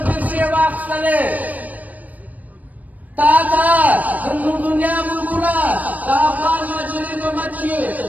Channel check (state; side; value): late; left; 0.077 ms